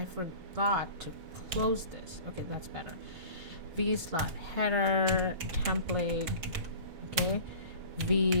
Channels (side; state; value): left; late; 6.1 ms